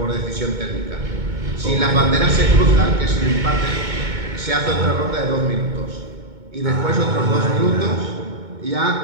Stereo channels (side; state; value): left; late; 2.2 ms